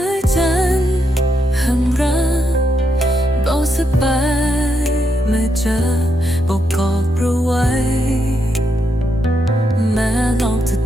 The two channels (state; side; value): normal; both; correlation 0.81